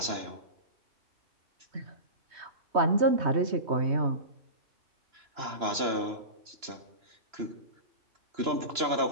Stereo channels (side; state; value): left; late; 3.0 ms